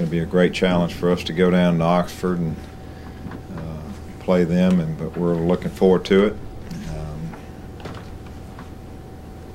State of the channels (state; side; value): identical; both; correlation 1.00